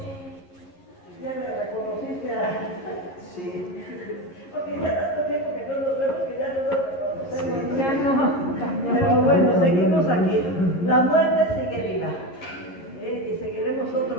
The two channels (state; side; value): late; right; 11 ms